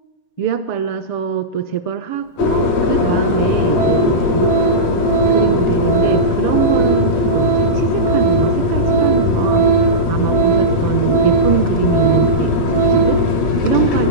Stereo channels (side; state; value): right; late; 7.2 ms